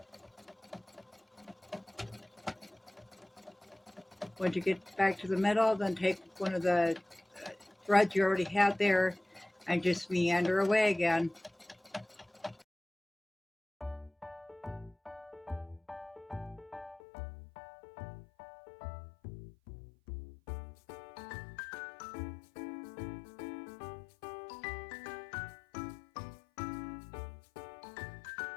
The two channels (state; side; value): drops out; right; at 17.0 s